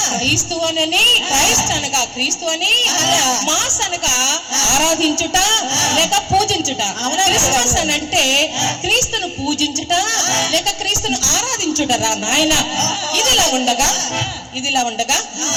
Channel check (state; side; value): identical; both; correlation 1.00